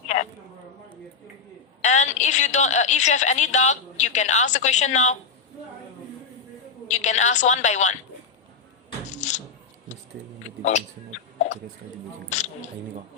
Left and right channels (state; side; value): quieter; right; 5.3 dB